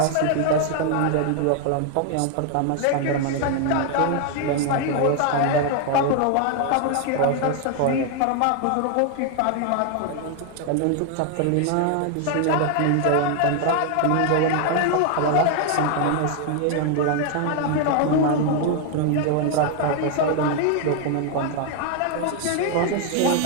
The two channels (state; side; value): different; both; correlation 0.00